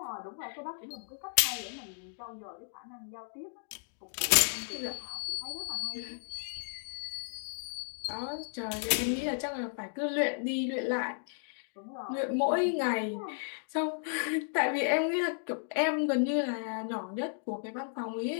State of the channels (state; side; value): silent; right; digital silence